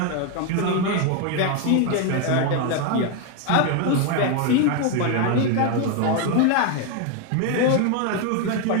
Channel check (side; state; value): both; different; correlation 0.01